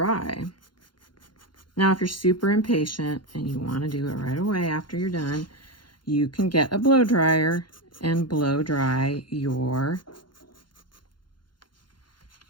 Now, if you're super impatient and you want to do it right away after you're done, you can get a blow dryer and blow dry your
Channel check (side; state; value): right; late; 0.71 ms